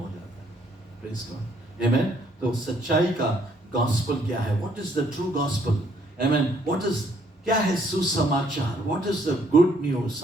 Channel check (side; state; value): both; normal; correlation 0.67